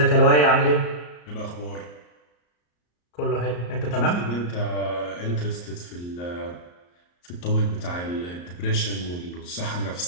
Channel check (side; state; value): right; late; 34 ms